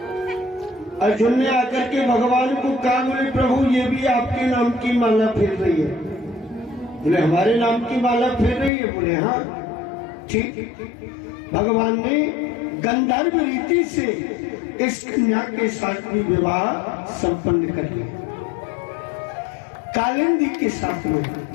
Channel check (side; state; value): right; drops out; at 8.7 s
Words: अर्जुन ने आकर के भगवान को कहा, बोले प्रभु ये भी आपके नाम की माला फेर रही है। बोले हमारे नाम की माला फेर रही है। बोले हाँ ठीक। भगवान ने गंधर्व रीति से इस कन्या के साथ भी विवाह संपन्न कर लिया। कालिंदी के साथ में